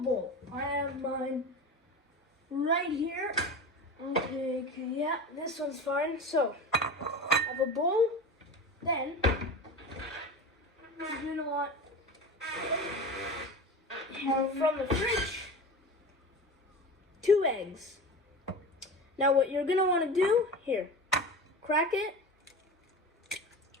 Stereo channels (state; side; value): normal; both; correlation 0.30